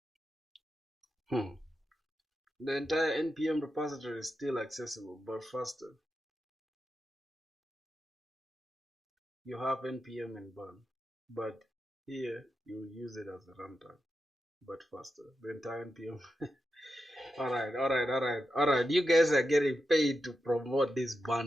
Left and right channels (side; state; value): both; normal; correlation 0.89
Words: The entire npm repository is still accessible, but faster. You have npm and bun, but here you use it as a runtime, but faster. The entire npm. Alright. You guys are getting paid to promote this